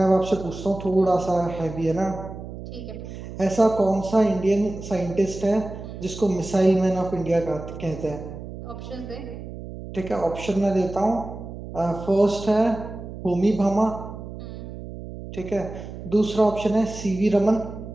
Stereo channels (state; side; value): noise; right; hum, 11 dB below the sound